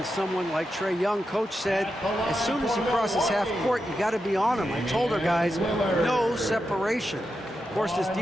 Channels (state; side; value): normal; both; correlation 0.88